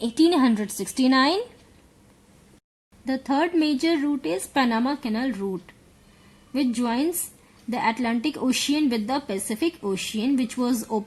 The third major route is Panama Canal route, which joins the Atlantic Ocean with the Pacific Ocean, which was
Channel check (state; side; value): identical; both; correlation 1.00